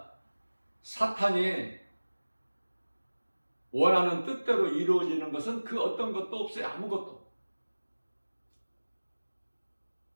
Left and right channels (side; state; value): both; inverted; correlation -1.00